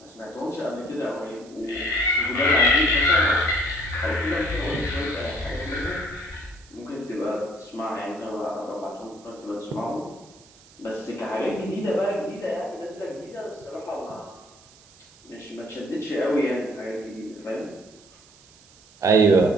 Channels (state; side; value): noise; right; hiss, 25 dB below the sound